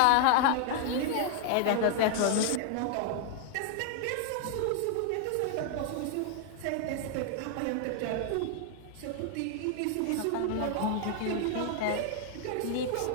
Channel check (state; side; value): different; both; correlation 0.00